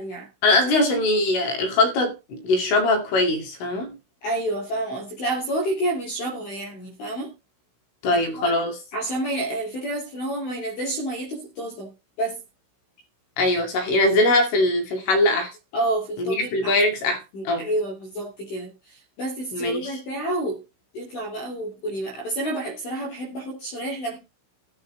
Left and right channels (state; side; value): late; right; 16 ms